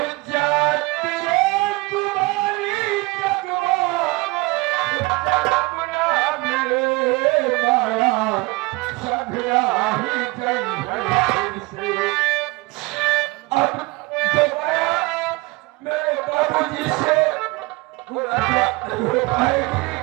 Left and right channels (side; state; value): left; quieter; 24.0 dB